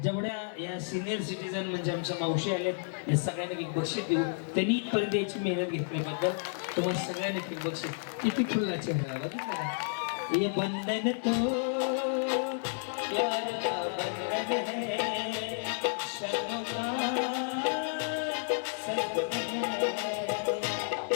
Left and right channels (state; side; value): silent; right; digital silence